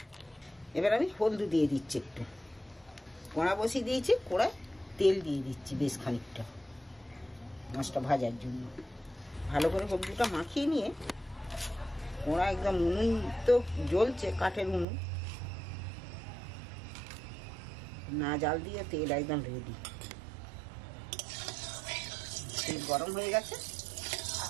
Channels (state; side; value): drops out; left; at 14.9 s